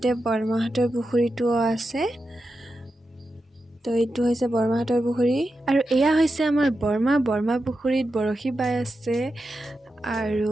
বৰমাহতৰ পুখুৰীটো আছে তো এইটো হৈছে বৰমাহতৰ পুখুৰী আৰু এয়া হৈছে আমাৰ বৰমা পুখুৰীত বৰশী বাই আছে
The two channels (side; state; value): both; normal; correlation 0.89